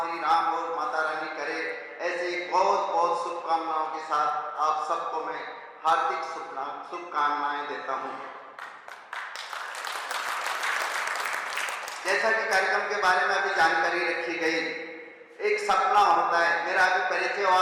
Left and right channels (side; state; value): both; identical; correlation 1.00